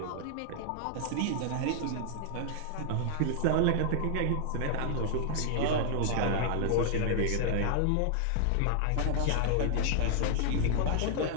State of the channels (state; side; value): different; both; correlation -0.01